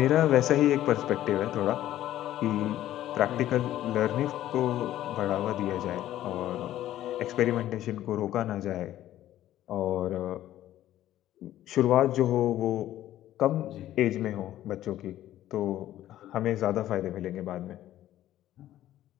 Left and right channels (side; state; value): right; quieter; 13.2 dB